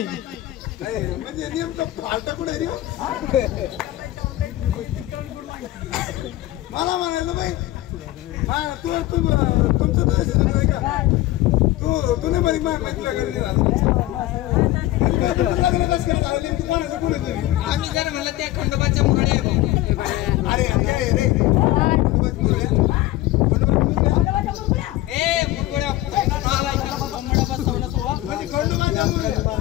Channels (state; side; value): quieter; right; 16.2 dB